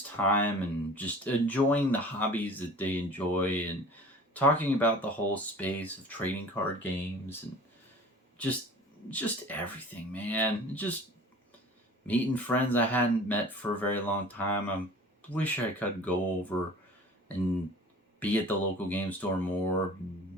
time and just enjoying the hobbies that they enjoy, and talking about the whole space of trading card games, and just everything, man. Just meeting friends I hadn't met for a very long time. I wish I could go over and be at the local game store more,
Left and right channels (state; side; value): normal; both; correlation 0.43